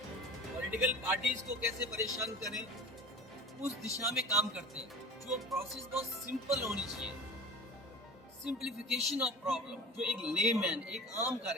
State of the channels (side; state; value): both; normal; correlation 0.36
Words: पॉलिटिकल पार्टीज को कैसे परेशान करें, उस दिशा में काम करते हैं। जो प्रोसेस बहुत सिंपल होनी चाहिए, सिंप्लीफिकेशन ऑफ प्रॉब्लम, जो एक लेमैन, एक आम